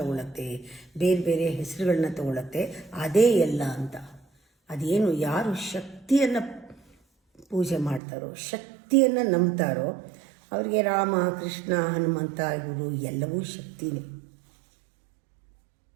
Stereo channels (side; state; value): left; drops out; at 8.0 s